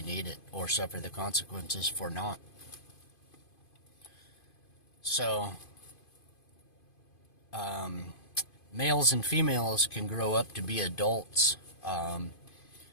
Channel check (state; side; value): late; right; 2.5 ms